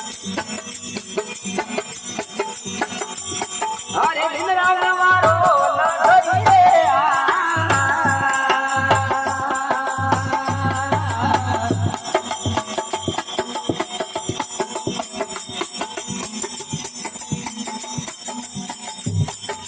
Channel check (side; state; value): both; identical; correlation 1.00